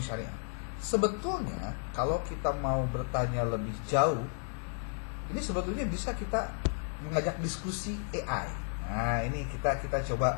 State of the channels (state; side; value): silent; right; 56 dB below the other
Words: Sebetulnya kalau kita mau bertanya lebih jauh, ini sebetulnya bisa kita mengajak diskusi AI. Nah, ini kita